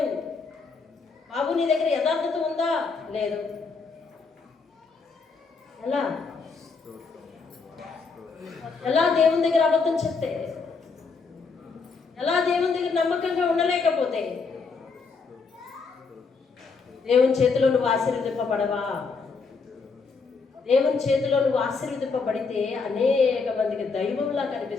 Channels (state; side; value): quieter; right; 4.7 dB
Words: బాబు నీ దగ్గర యథార్థత ఉందా? లేదు. ఎలా దేవుని దగ్గర అబద్ధం చెప్తే, ఎలా దేవుని దగ్గర నమ్మకంగా ఉండలేకపోతే దేవుని చేతిలో నువ్వు ఆశీర్వదింపబడవా? దేవుని చేతిలో నువ్వు ఆశీర్వదింపబడితే అనేక మందికి దైవంలా